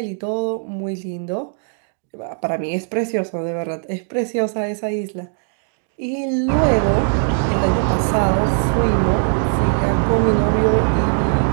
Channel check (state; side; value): silent; left; 60 dB below the other